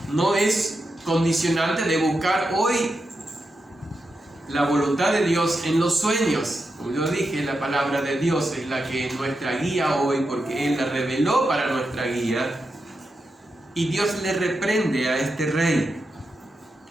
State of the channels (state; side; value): normal; both; correlation 0.87